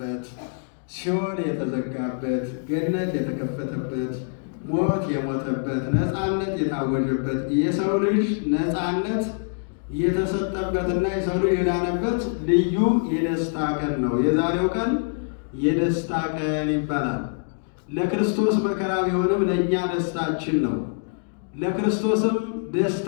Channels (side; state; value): right; silent; digital silence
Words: ሲኦል የተዘጋበት፣ ገነት የተከፈተበት፣ ሞት የሞተበት፣ ነፃነት የታወጀበት፣ የሰው ልጅ ነፃነት የተሰጠበትና የሰው ልጅ የዳነበት ልዩ የደስታ ቀን ነው። የዛሬው ቀን የደስታ ቀን ይባላል። ለክርስቶስ መከራ ቢሆንም ለእኛ ደስታችን ነው። ለክርስቶስም